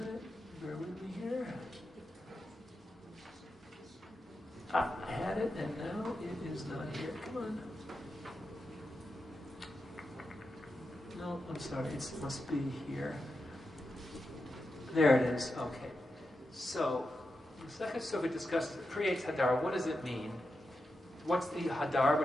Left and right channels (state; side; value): normal; both; correlation 0.88